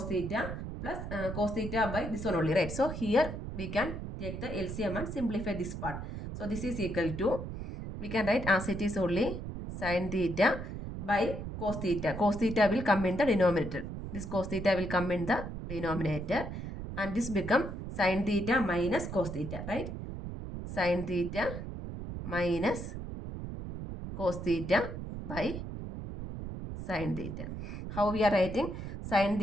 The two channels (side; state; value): right; noise; rumble, 7 dB below the sound